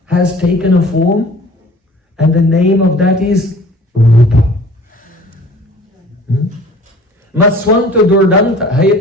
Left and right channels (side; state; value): both; normal; correlation 0.48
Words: has taken a form, and the name of that is Rūpa. Maswanta Durdanta